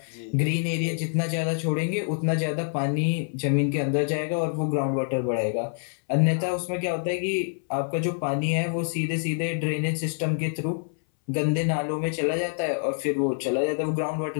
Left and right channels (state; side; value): silent; right; 59 dB below the other